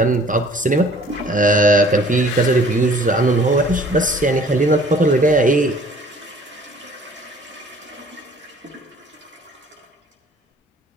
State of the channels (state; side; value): normal; both; correlation 0.53